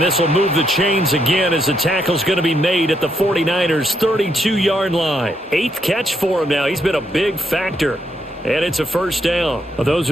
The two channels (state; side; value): normal; both; correlation 0.77